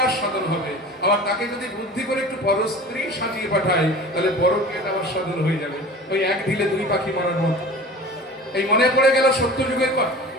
সাধন হবে, আবার তাকে যদি বুদ্ধি করে একটু পরস্ত্রী সাজিয়ে পাঠাই তাহলে পরকীয়াটা আমার সাধন হয়ে যাবে। ওই এক ঢিলে দুই পাখি মারার মতো। এই মনে পড়ে গেল সত্যযুগের কথা।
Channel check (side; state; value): both; normal; correlation 0.39